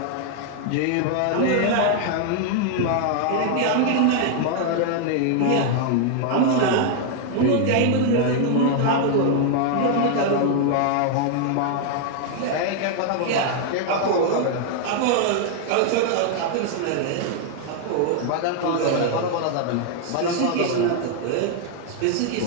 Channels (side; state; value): both; different; correlation 0.00